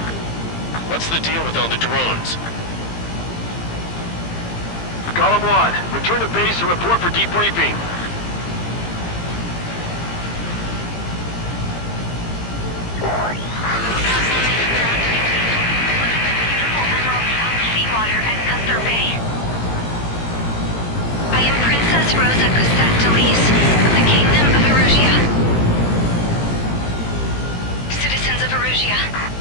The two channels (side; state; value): right; late; 17 ms